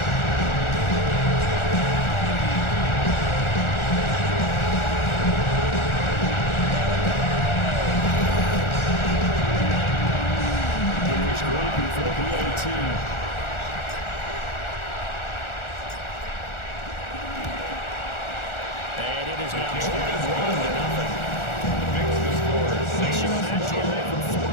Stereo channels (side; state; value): right; late; 1.4 ms